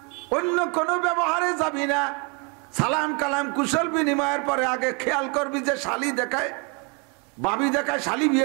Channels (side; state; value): left; quieter; 32.7 dB